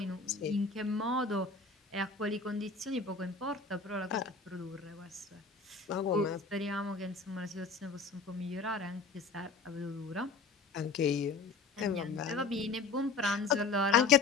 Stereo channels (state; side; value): quieter; right; 4.5 dB